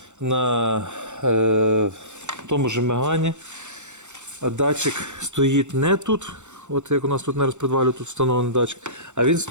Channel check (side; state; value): left; late; 0.84 ms